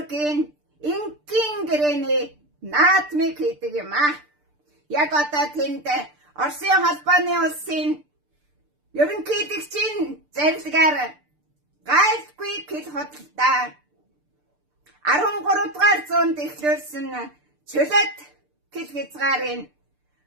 инкийн гэрээний наадмыг хийдэг юм аа. Яг одоо тэнд Оросын холбооны улсын ерөнхийлөгчийн зарилгаар гайлгүй хэл худалдаа 13 дугаар зуунд эхлүүлсэн чөлөөт хэл хязгаарын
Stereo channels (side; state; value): left; late; 6.7 ms